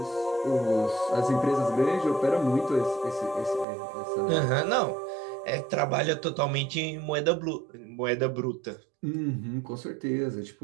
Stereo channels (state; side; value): drops out; left; at 3.7 s